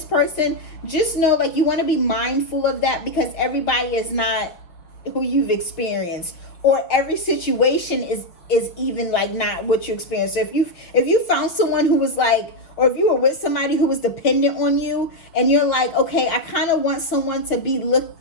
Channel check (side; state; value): right; late; 6.0 ms